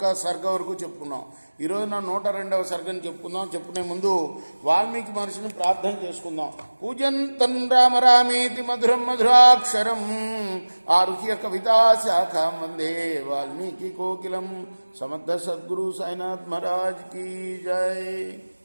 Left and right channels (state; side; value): inverted; both; correlation -1.00